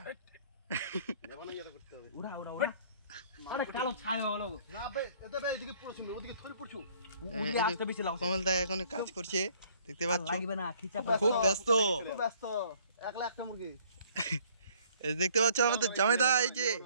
নেভানো ইয়াতে করতে হবে উড়া উড়া উড়া আরে কালো ছায়া হলো না বে এতে বে এদিকে পড়ছো ওদিকে ধরে পড়ছো ওই আসতে বেশি লাগাও কমল দা এখন কাজ করছে দেখতে পাচ্ছ লাগবে না খিচা খুব ব্যস্ত একলা একটা মুরগি এই দেখতে পাচ্ছ আমাদের জামাইদা এই যে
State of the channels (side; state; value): both; inverted; correlation -0.58